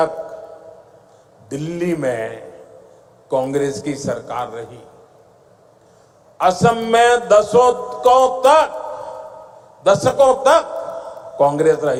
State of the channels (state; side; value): identical; both; correlation 1.00